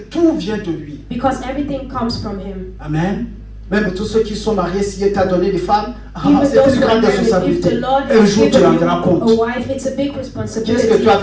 vient de lui. because everything comes from Him. Amen. Même tous ceux qui sont mariés, s'il t'a donné des femmes, Even c'est those une who are grande married, if responsabilité. the Lord Un has jour, tu given rendras you compte. a wife, it's a big responsibility. Qu'est-ce que tu as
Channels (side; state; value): both; identical; correlation 1.00